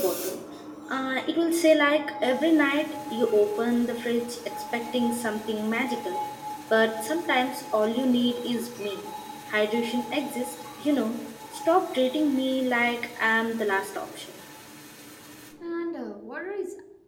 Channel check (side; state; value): both; identical; correlation 1.00